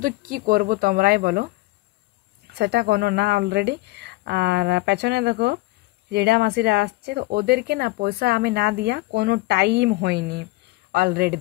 কি করব তোমরাই বলো, সেটা কোনো না অলরেডি। আর পেছনে দেখো জেঠা মাসিরা আসছে, তো ওদেরকে না পয়সা আমি না দিয়া কোনো টাইম হয়নি। অলরেডি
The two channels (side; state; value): right; quieter; 20.8 dB